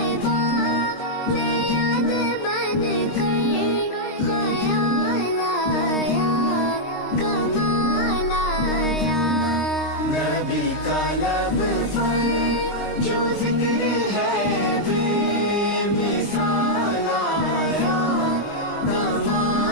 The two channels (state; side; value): late; right; 23 ms